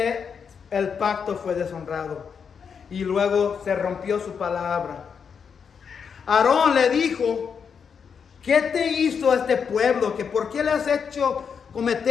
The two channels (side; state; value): right; quieter; 6.6 dB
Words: el pacto fue deshonrado. Y luego se rompió su palabra. Aarón le dijo, ¿qué te hizo este pueblo? ¿Que por qué le has hecho